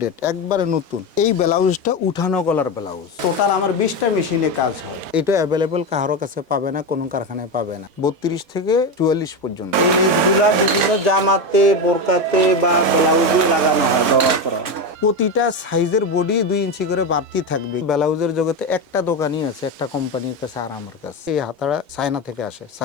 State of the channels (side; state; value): left; late; 3.6 ms